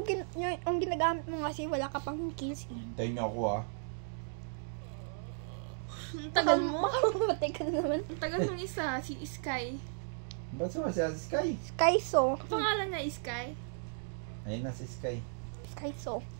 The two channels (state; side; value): silent; left; digital silence